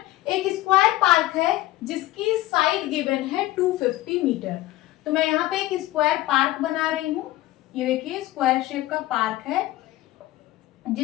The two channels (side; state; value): right; quieter; 16.5 dB